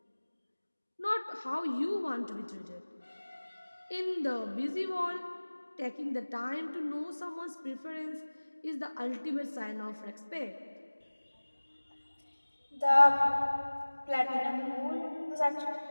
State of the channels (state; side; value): inverted; both; correlation -1.00